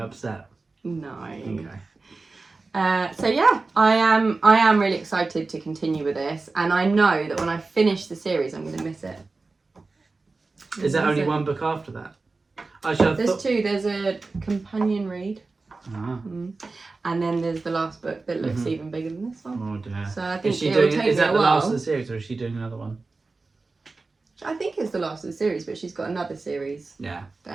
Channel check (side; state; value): left; quieter; 3.7 dB